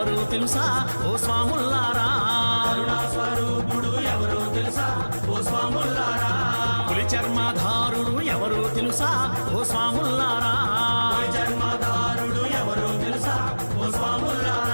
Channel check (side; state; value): both; inverted; correlation -1.00